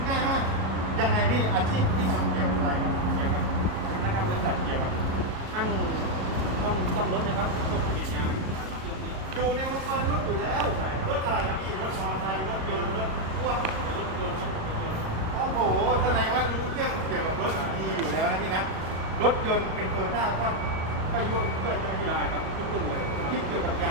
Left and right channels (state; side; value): late; left; 37 ms